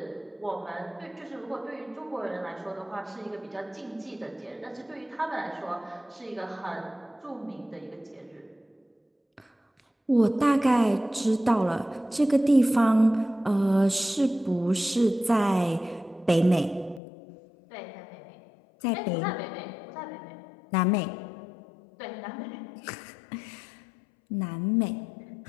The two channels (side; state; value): right; drops out; at 17.0 s